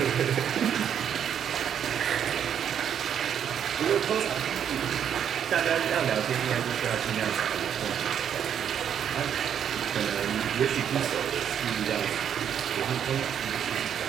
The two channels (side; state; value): left; quieter; 8.8 dB